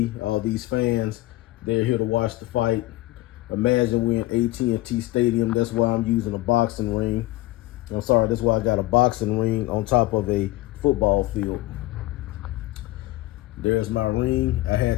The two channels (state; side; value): quieter; right; 18.4 dB